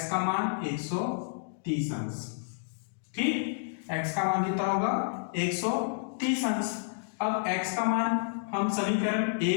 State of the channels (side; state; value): right; silent; digital silence